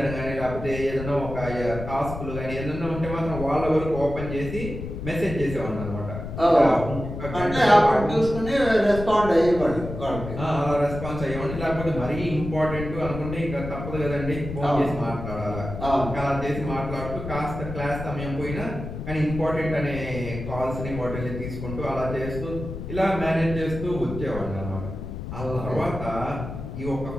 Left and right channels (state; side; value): noise; left; rumble, 8 dB below the sound